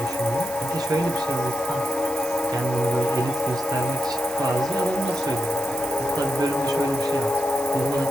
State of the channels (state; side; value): noise; right; hiss, 13 dB below the sound